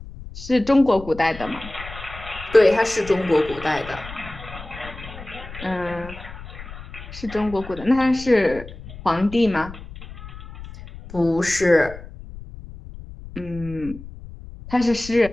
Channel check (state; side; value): noise; left; rumble, 14 dB below the sound